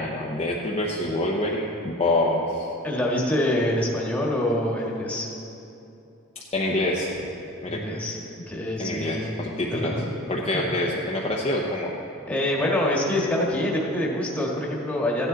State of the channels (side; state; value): both; normal; correlation 0.40